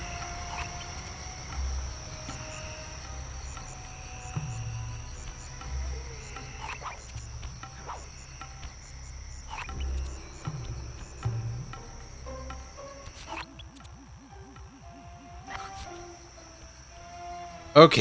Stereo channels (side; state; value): both; identical; correlation 1.00